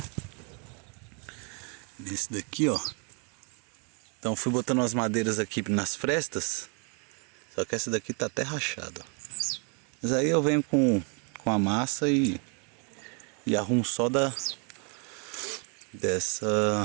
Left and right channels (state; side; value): quieter; left; 36.3 dB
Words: Nesse daqui, ó. Então fui botando as madeiras aqui nas frestas. Só que essa daqui tá até rachada, ó. Mas aí eu venho com a massa e arrumo só desse